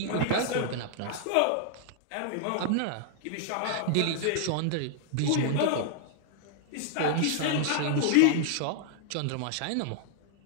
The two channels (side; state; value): both; different; correlation -0.01